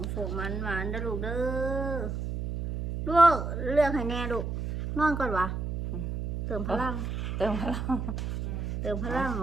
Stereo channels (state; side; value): noise; right; hum, 3 dB below the sound